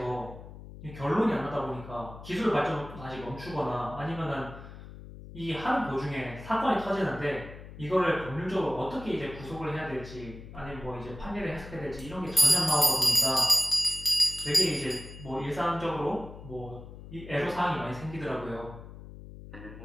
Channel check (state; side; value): noise; left; hum, 14 dB below the sound